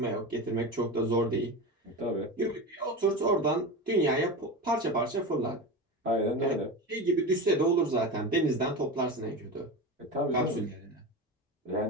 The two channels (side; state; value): both; normal; correlation 0.24